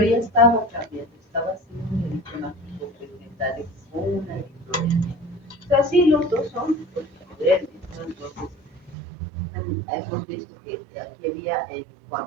ya estaba cambiando, estaba haciendo un eritema pigmentario con una eritrodermia. O sea, sí, los dos son toxicodermias, ¿no? Entonces, hemos visto que aquí había, en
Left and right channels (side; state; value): left; drops out; at 9.0 s